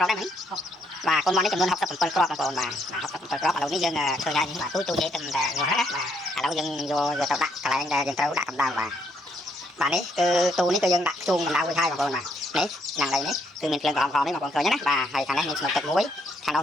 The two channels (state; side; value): normal; both; correlation 0.72